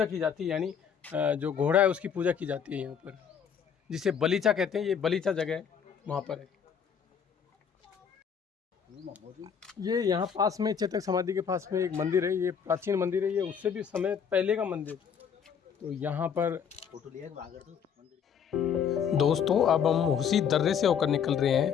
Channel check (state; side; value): quieter; right; 7.4 dB